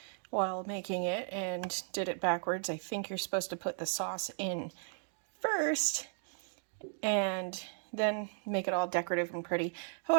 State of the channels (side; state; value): left; silent; digital silence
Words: while making it and did it backwards. I think you're supposed to put the sauce in first and then make it all decorative and pretty.